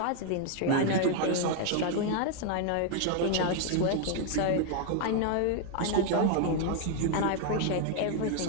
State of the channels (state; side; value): different; both; correlation 0.00